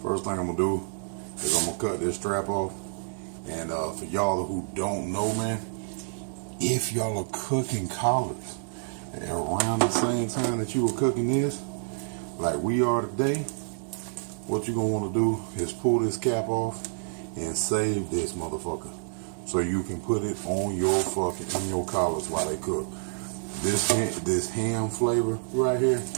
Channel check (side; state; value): left; silent; digital silence